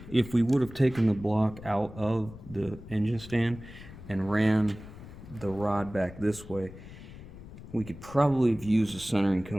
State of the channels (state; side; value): noise; left; rumble, 16 dB below the sound